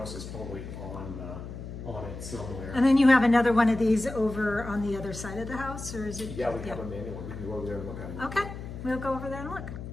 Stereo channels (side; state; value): left; noise; hum, 10 dB below the sound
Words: it's probably on it somewhere. And then you have another one of these over on the other side of the house, or is it? Yeah, we have a manual one. We can go over there and look at it. Okay, we'll go over there and look.